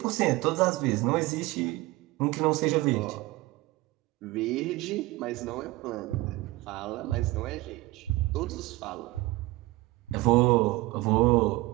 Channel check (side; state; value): left; quieter; 20.4 dB